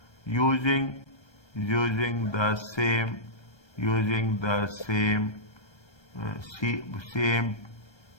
Using the same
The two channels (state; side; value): late; right; 1.3 ms